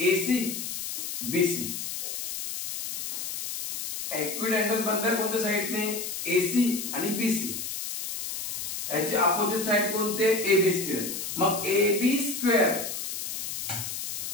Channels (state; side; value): noise; left; hiss, 5 dB below the sound